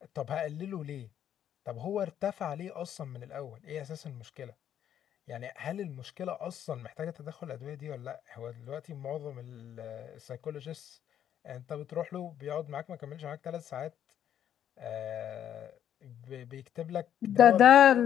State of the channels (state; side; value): quieter; right; 10.0 dB